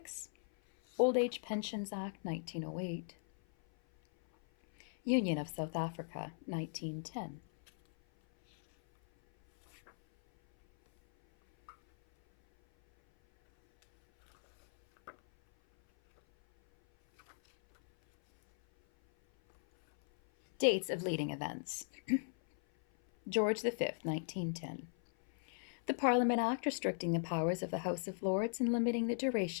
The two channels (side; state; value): right; silent; 53 dB below the other